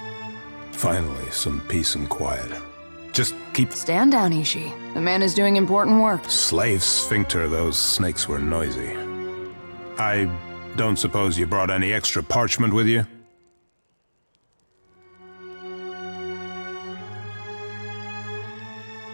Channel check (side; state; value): both; inverted; correlation -1.00